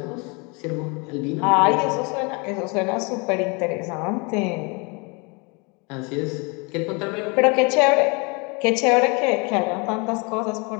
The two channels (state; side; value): quieter; right; 30.4 dB